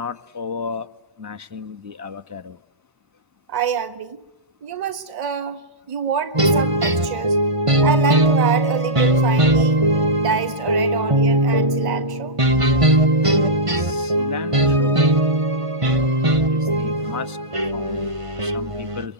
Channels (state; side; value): late; left; 1.1 ms